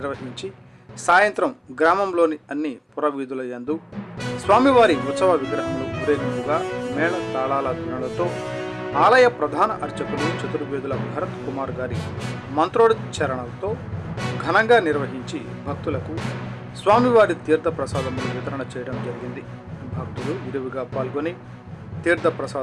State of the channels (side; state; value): both; identical; correlation 1.00